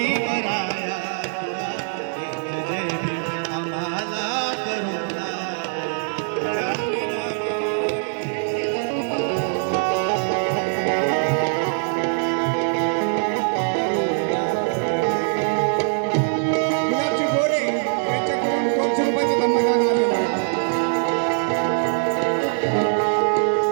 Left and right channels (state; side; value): silent; left; digital silence